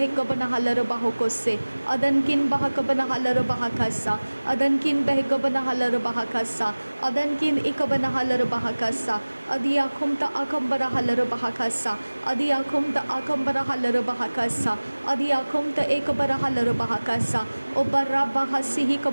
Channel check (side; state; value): both; inverted; correlation -1.00